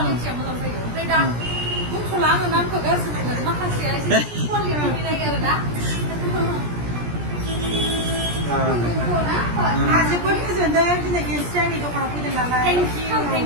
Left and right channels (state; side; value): late; left; 17 ms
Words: मोजां जायो ओमफ्राय दा बुंथ'ला आङो नामखौ गाज्रि मोनो माखासेया एसे क्वालिटि मिलायो आरो ना आंहा जोबोद गोजोनदों दिनै गेमस्रि आंनि दखानाव फैदों नालाय